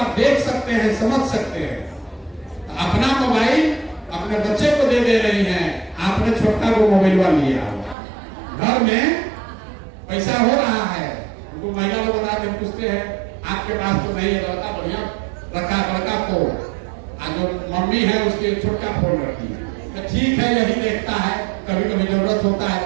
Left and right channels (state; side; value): drops out; left; at 8.0 s